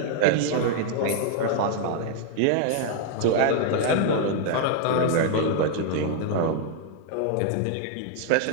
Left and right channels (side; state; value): both; different; correlation 0.00